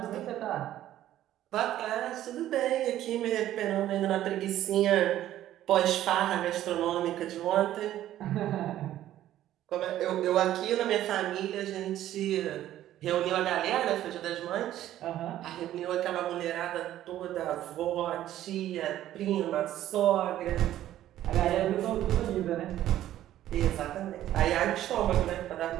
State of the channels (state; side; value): quieter; left; 12.9 dB